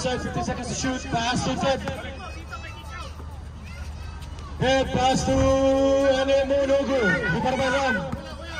15 seconds to shoot. Pass to Ted. Ted pass to Anemo, no good. Rebound by Ram.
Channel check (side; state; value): both; identical; correlation 1.00